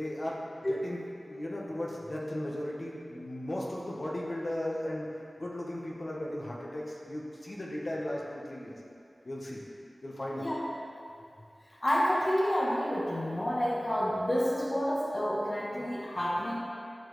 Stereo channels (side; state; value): both; normal; correlation 0.98